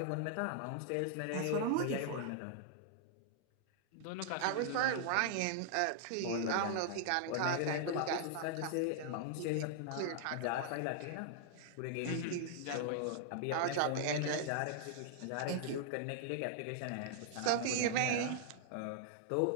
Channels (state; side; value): different; both; correlation -0.01